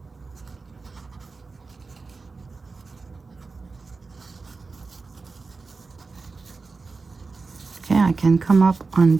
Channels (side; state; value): left; quieter; 4.1 dB